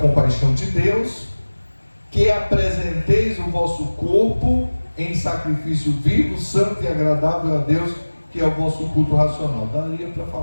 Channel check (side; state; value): both; inverted; correlation -1.00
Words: de Deus, que apresenteis o vosso corpo em sacrifício vivo, santo e agradável a Deus, que é o vosso culto racional. Daria para